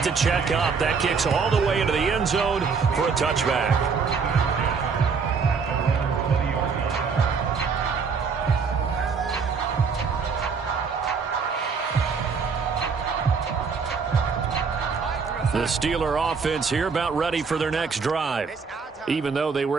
to check up. That kicks all the way into the end zone for a touchback. The Steeler offense here about ready for their next drive. Even though they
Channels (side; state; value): left; quieter; 5.4 dB